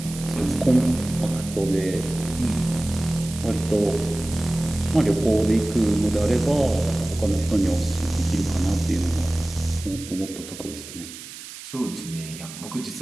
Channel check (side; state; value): right; noise; hiss, 13 dB below the sound